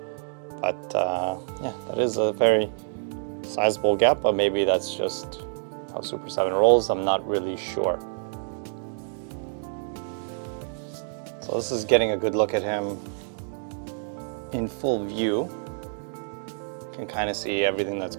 But yeah, that is a very sizable gap, but maybe that's just how Super7 rolls. I'm not really sure. So this is getting a good look at him in full view. You can kind of see everything that's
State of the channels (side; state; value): left; silent; digital silence